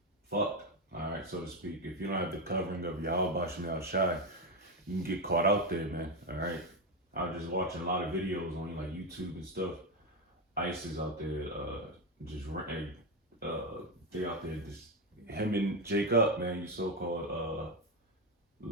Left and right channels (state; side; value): normal; both; correlation 0.10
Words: fucked, all right, so to speak. If you don't have the covering of Yahweh Bashem Shai, you can get caught out there, man. All right, I was just watching a lot of videos on like YouTube and stuff. ICE is out there, they out there just hemming Jake up, man. You so-called